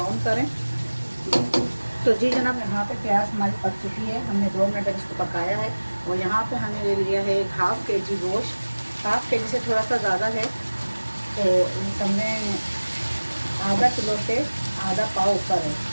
करें। तो जी जनाब, यहाँ पे प्याज हमारी पक चुकी है। हमने 2 मिनट तक इसको पकाया है। और यहाँ पे हमने ले लिया है 1/2 kg गोश्त। 1/2 kg से थोड़ा सा ज़्यादा है, तो हमने आधा किलो से आधा पाव ऊपर है।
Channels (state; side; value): inverted; both; correlation -1.00